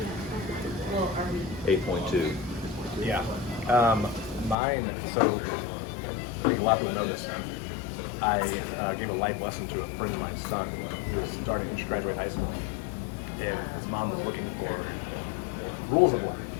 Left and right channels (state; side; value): drops out; right; at 4.5 s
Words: 8.2. Yeah. Mine, so I think a lot of people know this. I gave a life lesson to a friend of my son who was starting to graduate high school. And his mom was looking for rules of life.